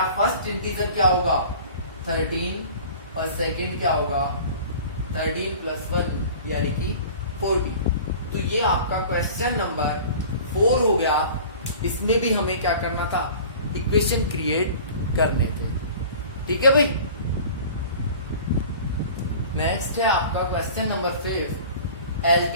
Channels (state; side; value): inverted; both; correlation -0.42